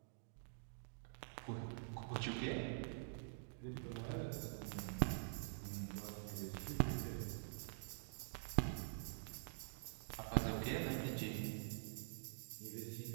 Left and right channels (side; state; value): left; silent; digital silence